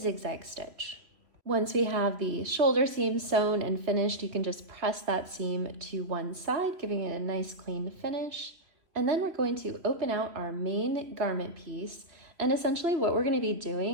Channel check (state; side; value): late; left; 3.0 ms